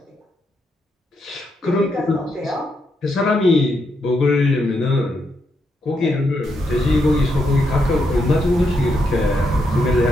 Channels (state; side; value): normal; both; correlation 0.80